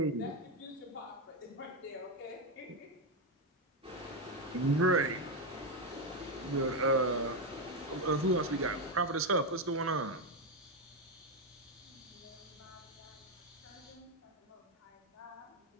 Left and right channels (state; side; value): normal; both; correlation 0.06